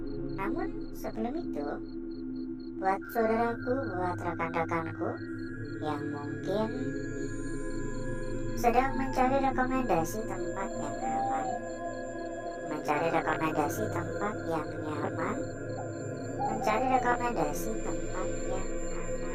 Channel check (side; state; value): both; identical; correlation 1.00